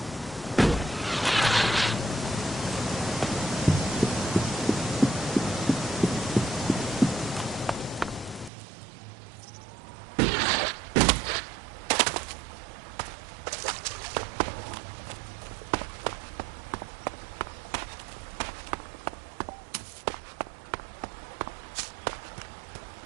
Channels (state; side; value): drops out; left; at 8.5 s